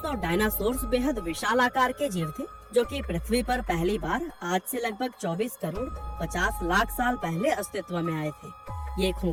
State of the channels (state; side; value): identical; both; correlation 1.00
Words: डायनासोर्स बेहद विशाल आकार के जीव थे जो कि पृथ्वी पर पहली बार आज से लगभग 24 करोड़ 50 लाख साल पहले अस्तित्व में आए थे। ये